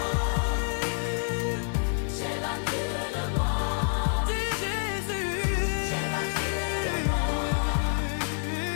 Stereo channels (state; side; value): silent; right; 59 dB below the other